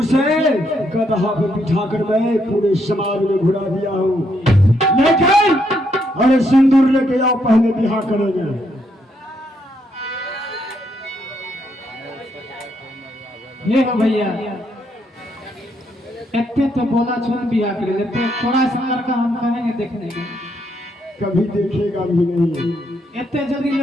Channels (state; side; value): normal; both; correlation 0.75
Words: गधा पे बिठाकर मैं पूरे समाज में घुरा दिया हूँ। लेकिन अरे सिंदूर लेके आओ, पहले बिहार करेंगे। ये हो भैया, इतने तो बोला छोड़ बिहार कर लेते, थोड़ा सा लड़का हम कहेंगे देखने के, कभी देखेगा भी नहीं। इतने जल्दी